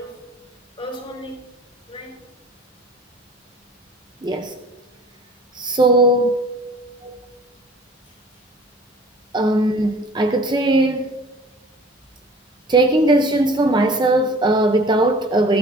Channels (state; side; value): normal; both; correlation 0.47